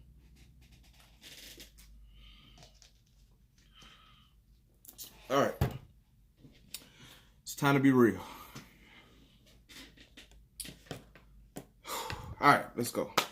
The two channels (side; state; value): both; identical; correlation 1.00